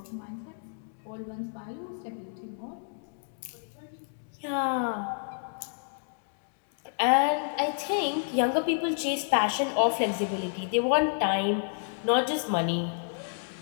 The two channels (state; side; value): silent; right; digital silence